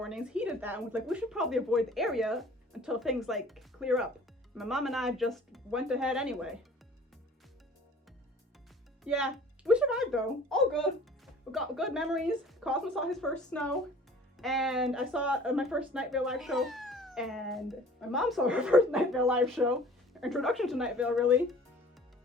heeded that, and was like, we should probably avoid the area until things like clear up. My mom and I just went ahead anyway. Yeah, we survived though. All good. We got good memories. Cosmo saw his first snow, and I saw my first Night Vale live show, and my mom saw her first Night Vale live show. Introduction to Night Vale, really.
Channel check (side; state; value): both; normal; correlation 0.48